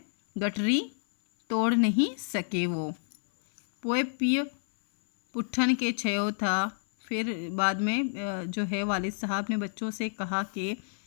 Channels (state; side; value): silent; right; 58 dB below the other